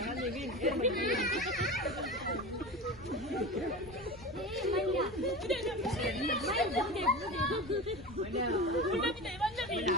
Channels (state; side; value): noise; left; rumble, 19 dB below the sound